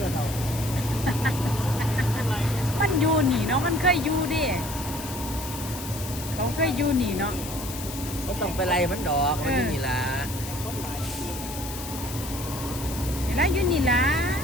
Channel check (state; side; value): noise; left; hiss, 10 dB below the sound